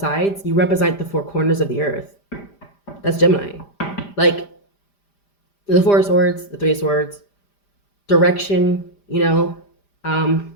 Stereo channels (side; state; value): right; late; 5.0 ms